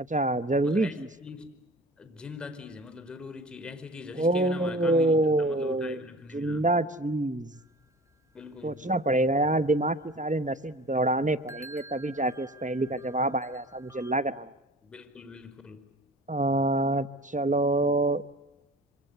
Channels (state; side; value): normal; both; correlation 0.41